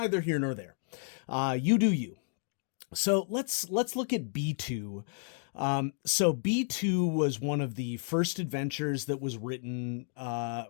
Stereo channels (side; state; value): right; silent; 57 dB below the other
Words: here nor there. You do you. So let's look at B2. So B2 was one of the first adventures that was written